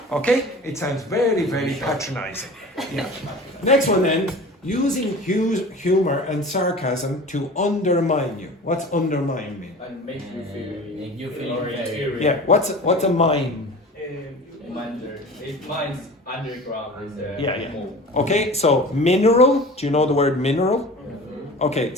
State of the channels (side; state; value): both; normal; correlation 0.38